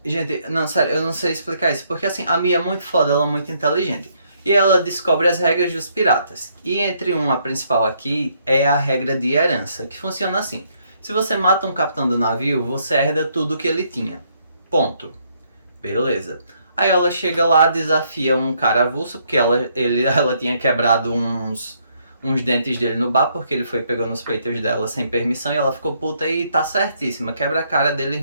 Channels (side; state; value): both; inverted; correlation -0.71